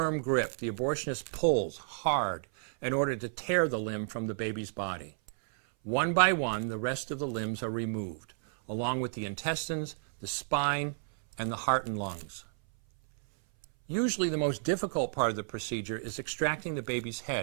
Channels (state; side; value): silent; left; 57 dB below the other